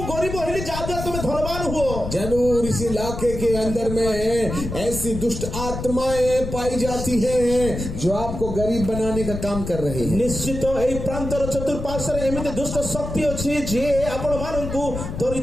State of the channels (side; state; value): left; noise; rumble, 7 dB below the sound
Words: गरीब होली जादा तुम धनवान हुओ। जरूर इस इलाके के अंदर में ऐसी दुष्ट आत्माएं पाई जाती हैं जो आपको गरीब बनाने का काम कर रही है। निश्चित एई प्रांतर चतुर्पार्श्वरे एमिति दुष्ट शक्ति अछि जे आपण माननकु